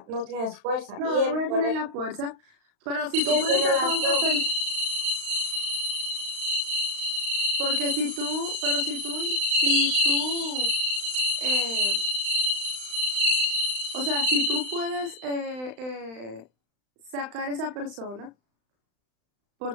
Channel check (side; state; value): left; late; 35 ms